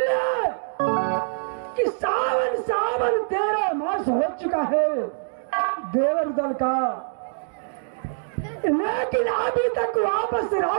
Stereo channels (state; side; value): silent; left; digital silence